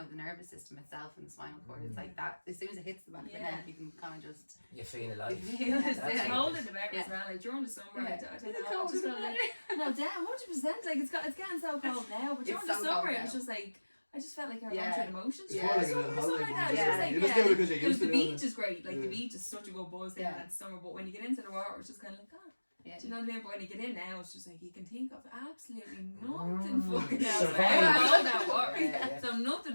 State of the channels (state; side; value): inverted; both; correlation -1.00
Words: the nervous system itself and the spinal cord. It's like that, as soon as it hits the back of the Yeah. neck, you can kind of just, you feel alive. You feel it, That's yeah. It's what cold it in is. the better as well. Like during the summer, I don't Is know. it I cold just in felt the like no, damn, 100%. Like it's getting so cold now, but during It's the so summer, cold it was now. just like I just felt like I Yeah. went through the motions. Yeah. It's more like a Summer little or something holiday. like that. one, It's Yeah. just like, You just do it because you're used to the it. beach is great. Like Yeah. the beach is such a good buzz there Yeah. that summer, but when you get into the water, it's just kind of like, oh, yeah. do you know what I mean? But when you get in now, it's just like you can think of absolutely nothing fucking else. Survive. Like, all that water. Yeah. So